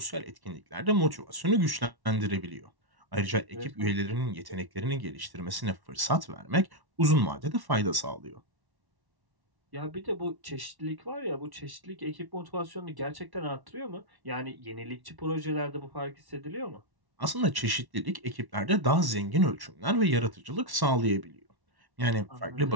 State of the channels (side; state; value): left; late; 1.1 ms